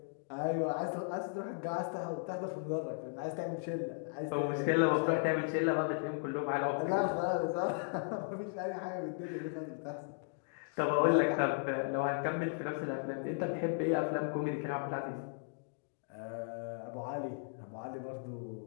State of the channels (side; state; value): right; silent; digital silence